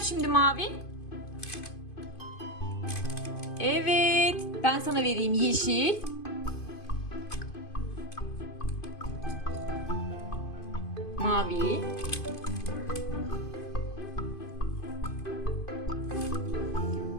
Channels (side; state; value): right; late; 2.5 ms